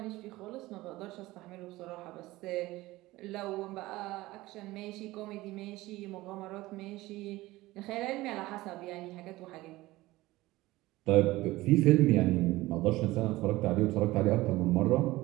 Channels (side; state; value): left; quieter; 18.6 dB